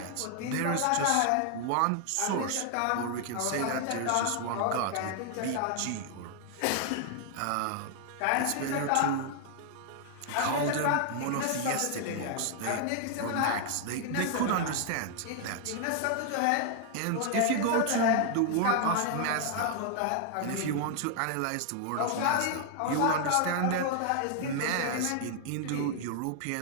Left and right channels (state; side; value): different; both; correlation 0.00